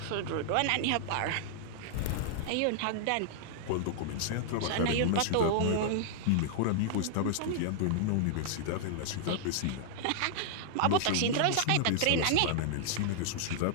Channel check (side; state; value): both; different; correlation -0.01